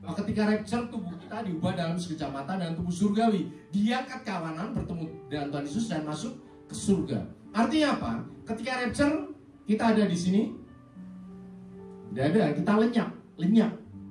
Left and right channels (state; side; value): identical; both; correlation 1.00